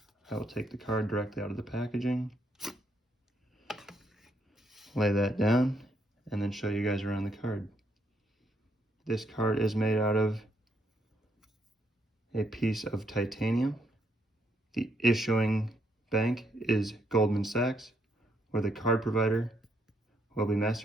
I will take the card directly out of the packaging, lay that down, and then show you guys around the card. This card is made out of a piece of titanium. The issuing bank is Goldman Sachs, where the card provider will be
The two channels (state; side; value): normal; both; correlation 0.75